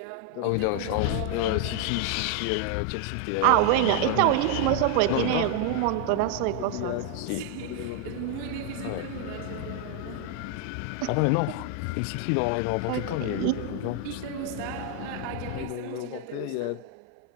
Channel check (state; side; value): different; both; correlation 0.00